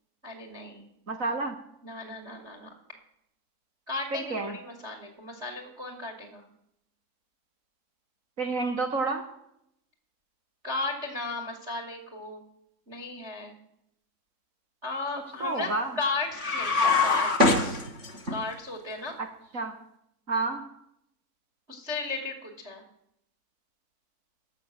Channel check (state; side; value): late; left; 3.5 ms